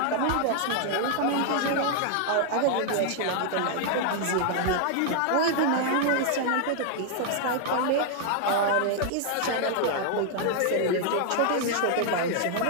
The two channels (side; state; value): both; different; correlation 0.00